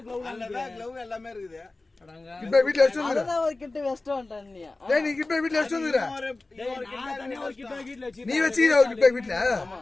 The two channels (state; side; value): quieter; right; 3.2 dB